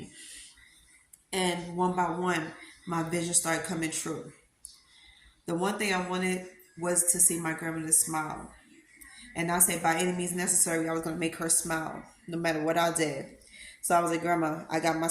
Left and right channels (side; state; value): both; identical; correlation 1.00